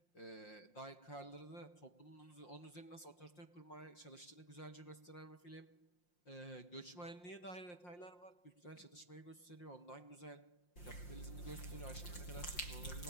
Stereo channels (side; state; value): right; late; 5.7 ms